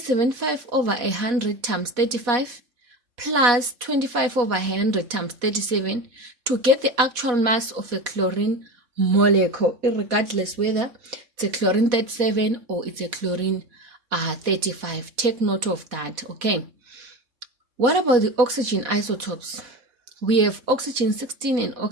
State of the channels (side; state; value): left; late; 4.1 ms